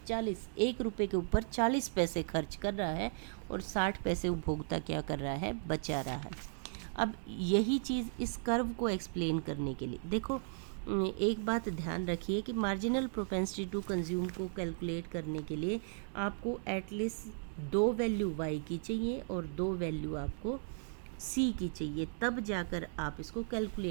1 रुपये के ऊपर 40 पैसे खर्च कर रहा है और 60 पैसे उपभोक्ता क्या कर रहा है? बचा रहा है। अब यही चीज़ इस कर्व को एक्सप्लेन करने के लिए देखो, एक बात ध्यान रखिए कि मार्जिनल प्रोपेंसिटी टू कंज्यूम को कैलकुलेट करने के लिए आपको एटलीस्ट 2 वैल्यू y की चाहिए और 2 वैल्यू आपको c की चाहिए, तब जाकर आप इसको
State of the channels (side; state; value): left; silent; digital silence